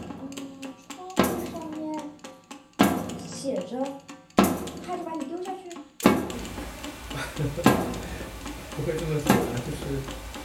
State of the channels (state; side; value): identical; both; correlation 1.00